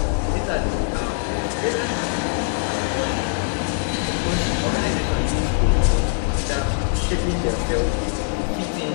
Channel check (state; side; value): silent; right; digital silence